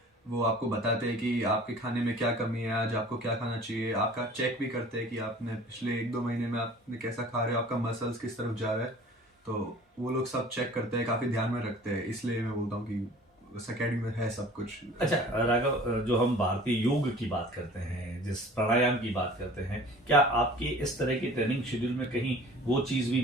वो आपको बताते हैं कि आपके खाने में क्या कमी है, आज आपको क्या खाना चाहिए। आपका चेक भी करते हैं कि आपने पिछले 1-2 महीने में आपने कैसा खा रहे हो, आपका मसल्स किस तरफ जा रहा है। तो वो लोग सब चेक करते हैं, काफ़ी ध्यान में रखते हैं, इसलिए मैं बोलता हूँ कि उस एकेडमी में है सब कुछ। अच्छा राघव, जो हम भारतीय योग की बात करते हैं, जिस प्राणायाम की बात करते हैं, क्या आपके इस तरह की ट्रेनिंग शेड्यूल में कहीं वो चीज़ भी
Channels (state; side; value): normal; both; correlation 0.46